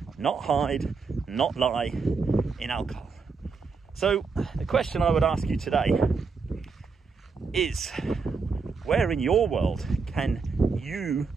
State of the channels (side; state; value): left; quieter; 4.9 dB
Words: not hide, not lie in alcohol. So the question I would ask you today is, where in your world can you